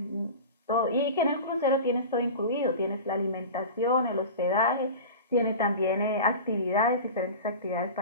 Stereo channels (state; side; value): inverted; both; correlation -0.33